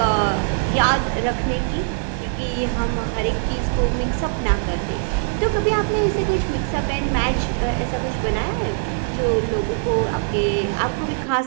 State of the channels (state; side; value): silent; left; digital silence